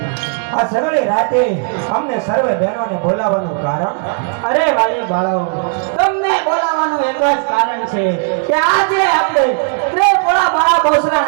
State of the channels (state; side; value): quieter; left; 36.5 dB